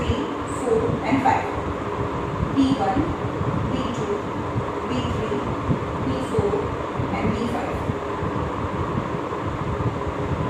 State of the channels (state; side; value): identical; both; correlation 1.00